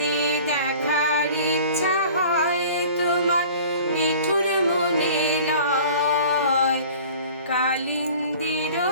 দেখার ইচ্ছা হয় তোমার নিঠুর মনে লয়, কালিন্দির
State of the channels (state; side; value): inverted; both; correlation -0.45